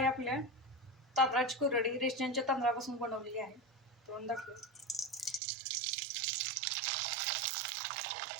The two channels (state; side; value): drops out; left; at 5.4 s